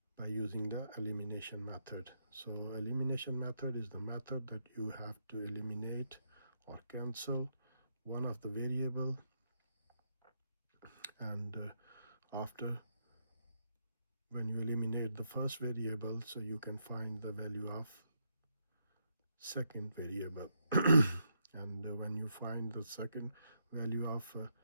by using the elimination method. So elimination method is the method that you have to eliminate or cancel one of the variable, and after when you eliminate the first variable, so you can find the value of second variable. And when you find the second value of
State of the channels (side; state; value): both; inverted; correlation -0.79